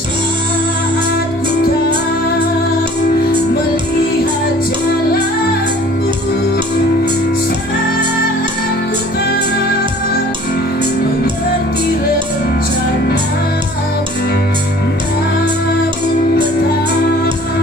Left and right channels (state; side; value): normal; both; correlation 0.50